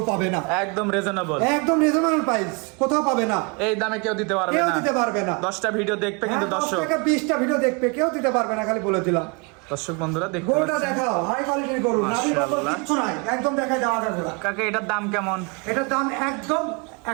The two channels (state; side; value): quieter; left; 32.0 dB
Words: পাবে না। একদম রিজনেবল। একদম রিজনেবল প্রাইস, কোথাও পাবে না। এই দামে কেউ দিতে পারবে কেউ না। দিতে পারবে না। 10টা ভিডিও দেখবে কিন্তু হ্যাঁ, 10 দর্শক। থেকে 20টা ভিডিও দেখবে, কেউ দিতে পারবে না, খালি বলে দিলাম। দর্শক বন্ধুরা দেখতে গরুটা পাচ্ছেন দেখাও, হাই কোয়ালিটির গরু, নাভি কম্বল মাশাআল্লাহ। কিচ্ছু নাই, একদম দেখাই দেওয়া যায় গরু। কাকা এটার দাম কেমন? এটার দাম একদম